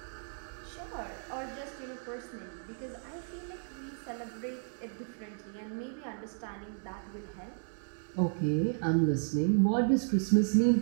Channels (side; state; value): left; silent; digital silence